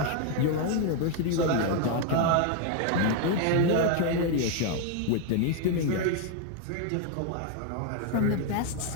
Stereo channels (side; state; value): both; different; correlation 0.00